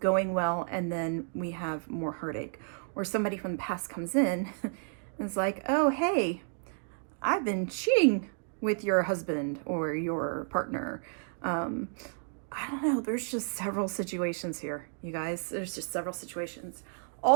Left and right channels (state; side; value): silent; left; 57 dB below the other